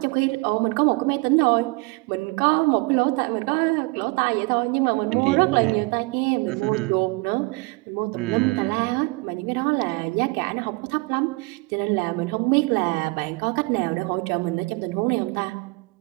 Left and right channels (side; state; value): left; quieter; 26.6 dB